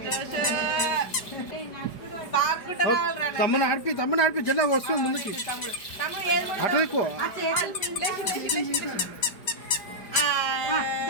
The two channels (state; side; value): late; right; 4.9 ms